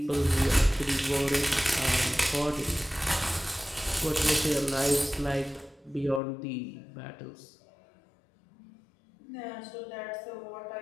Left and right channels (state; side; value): drops out; right; at 6.2 s